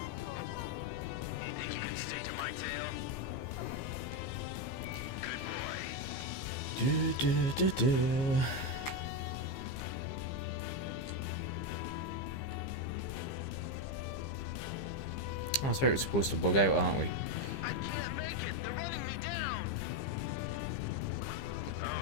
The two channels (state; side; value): late; right; 15 ms